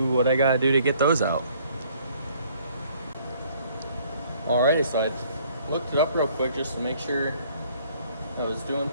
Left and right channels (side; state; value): both; inverted; correlation -0.60